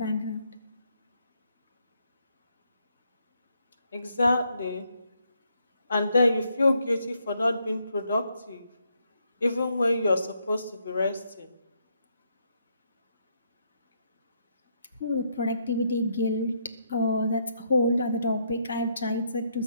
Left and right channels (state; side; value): inverted; both; correlation -0.75